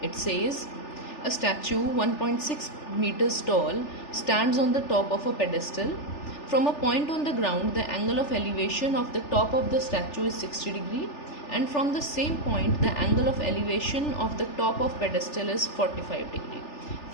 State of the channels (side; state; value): right; late; 3.4 ms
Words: It says a statue 1.6 meters tall stands on the top of a pedestal. From a point on the ground, the angle of elevation of the top of the statue is 60 degree, and from the same point, the angle of elevation of the top of pedestal is 45 degree.